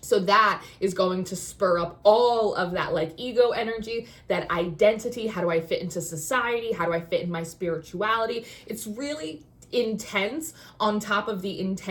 So that is going to spur up all of that like ego energy, that identity. How do I fit into society? How do I fit in my spirituality? It's really intense on top of the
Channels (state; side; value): identical; both; correlation 1.00